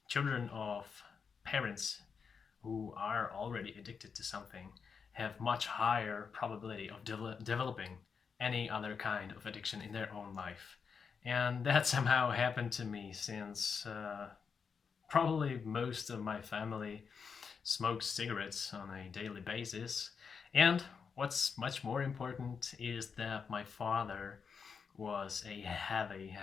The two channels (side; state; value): right; quieter; 6.0 dB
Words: children of parents who are already addicted to something have much higher probability of developing any other kind of addiction in their own life. And that somehow happened to me since probably most of my family smokes cigarettes on a daily basis. And what's much more important is that my father was a heavy,